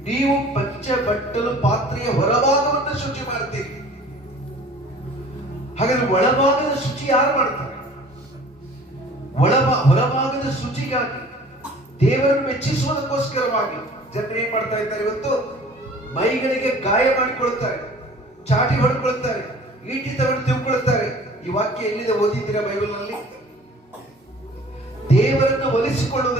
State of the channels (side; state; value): both; normal; correlation 0.48